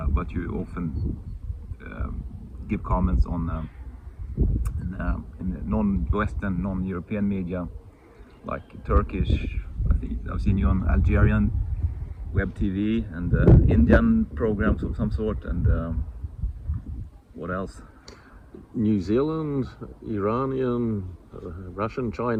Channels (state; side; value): identical; both; correlation 1.00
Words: but you often give comments on in non-Western, non-European media, like Turkish. I think I've seen you on Algerian web TV and Indian programs of some sort, and what else? New Zealand, Iranian, Russian,